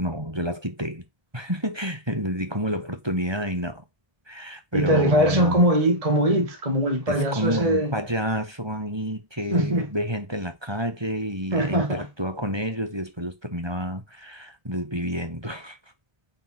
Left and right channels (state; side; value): late; left; 1.2 ms